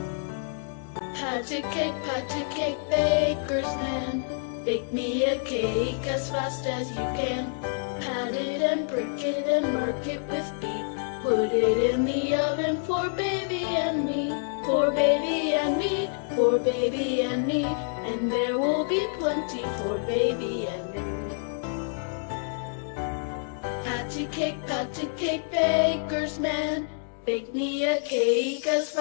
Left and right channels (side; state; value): right; silent; 60 dB below the other